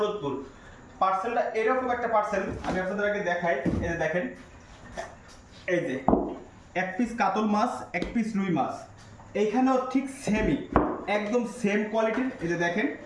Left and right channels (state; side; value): identical; both; correlation 1.00